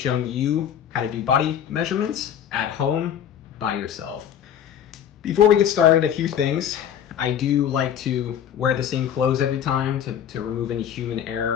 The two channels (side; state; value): right; quieter; 9.3 dB